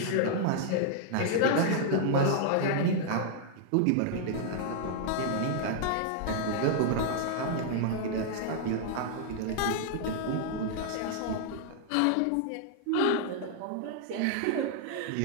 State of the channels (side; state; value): both; different; correlation -0.01